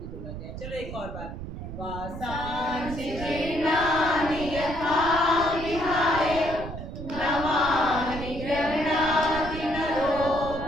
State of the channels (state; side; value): noise; right; rumble, 9 dB below the sound